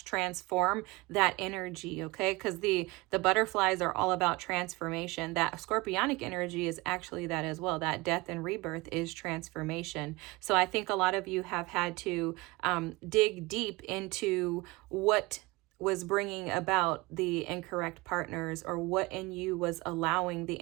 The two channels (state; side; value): quieter; left; 23.2 dB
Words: transform that energy. Okay, because the butterflies are all about transformation. That Scorpionic energy is actually that as well. That death and rebirth is transformation. So I think a lot of you have had to dig deep into what was bringing about the incorrect partners, or what in you was allowing the